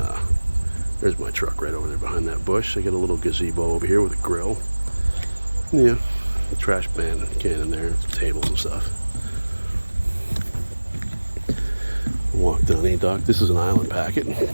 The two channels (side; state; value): both; inverted; correlation -1.00